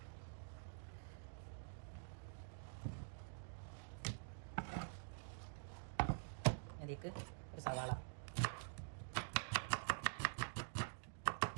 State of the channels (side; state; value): left; silent; digital silence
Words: അതിലേക്ക് ഒരു സവാള,